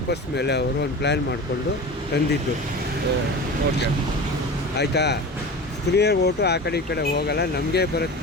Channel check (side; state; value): both; normal; correlation 0.32